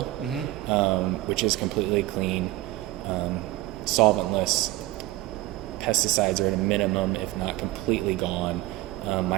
which is completely clean, solventless. Pesticides are at a minimum, if not completely gone.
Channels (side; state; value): left; quieter; 17.6 dB